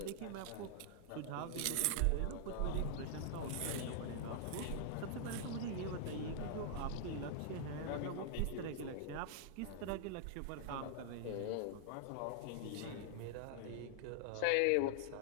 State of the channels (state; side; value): different; both; correlation -0.01